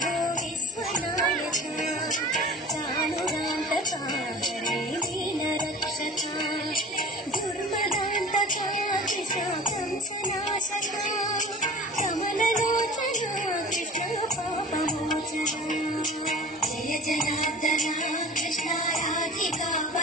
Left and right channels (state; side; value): normal; both; correlation 0.39